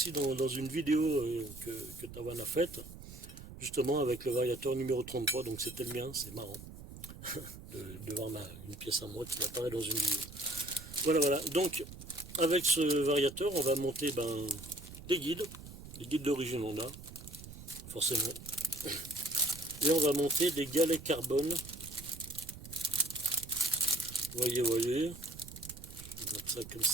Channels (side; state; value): right; noise; rumble, 14 dB below the sound